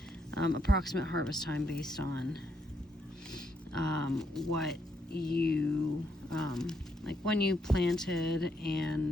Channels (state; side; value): normal; both; correlation 0.76